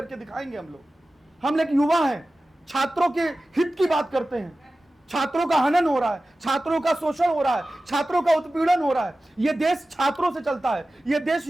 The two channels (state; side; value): normal; both; correlation 0.96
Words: दिखाएंगे हम लोग। हम लोग युवा हैं, छात्रों के हित की बात करते हैं। छात्रों का हनन हो रहा है, छात्रों का शोषण हो रहा है, छात्रों का उत्पीड़न हो रहा है। यह देश छात्रों से चलता है, यह देश